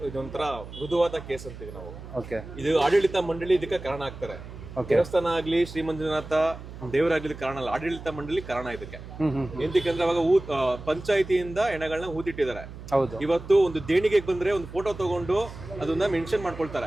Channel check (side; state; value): right; noise; hum, 13 dB below the sound